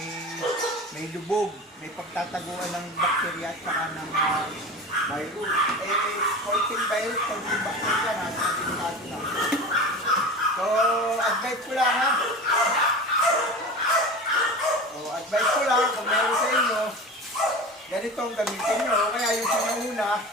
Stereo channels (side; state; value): both; normal; correlation 0.32